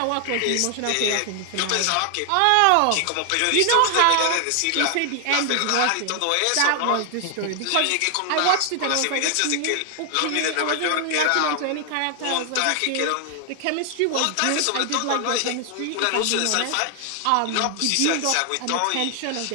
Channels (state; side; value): different; both; correlation 0.00